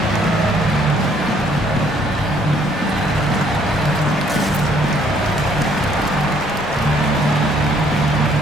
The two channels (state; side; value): normal; both; correlation 0.64